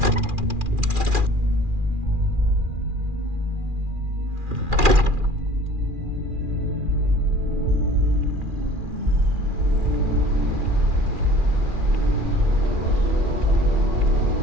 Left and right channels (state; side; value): late; left; 2.4 ms